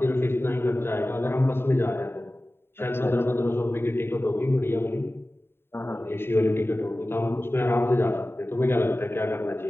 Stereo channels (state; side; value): late; right; 0.11 ms